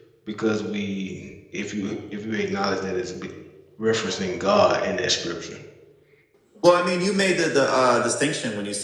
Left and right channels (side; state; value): both; identical; correlation 1.00